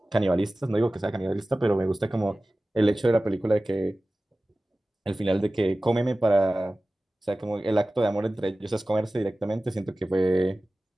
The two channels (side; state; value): both; normal; correlation 0.97